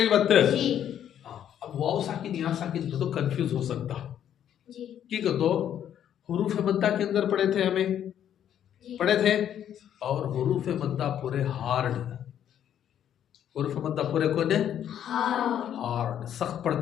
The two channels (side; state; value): right; quieter; 10.0 dB